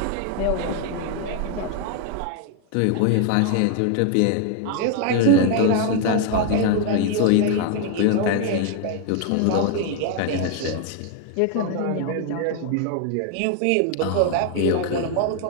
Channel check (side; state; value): both; different; correlation 0.01